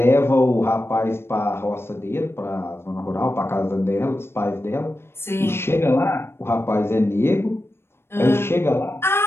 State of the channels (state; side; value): late; right; 0.12 ms